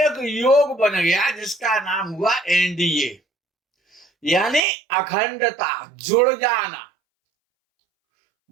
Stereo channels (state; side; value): drops out; left; at 4.6 s